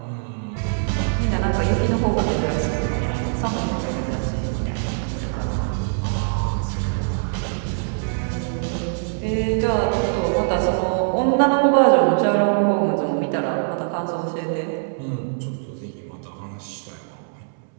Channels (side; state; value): left; silent; 64 dB below the other